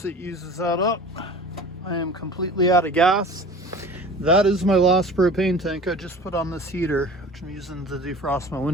it uses that up, I am completely out of gas. That is my last propane tank I just put on this heater, which I'm using to defrost my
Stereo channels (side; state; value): both; normal; correlation 0.40